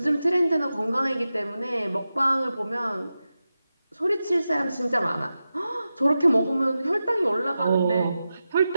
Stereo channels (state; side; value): inverted; both; correlation -0.92